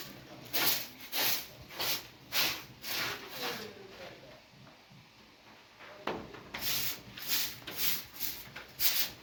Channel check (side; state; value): both; identical; correlation 1.00